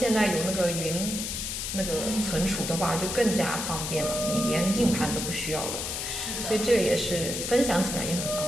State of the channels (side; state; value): left; noise; hiss, 4 dB below the sound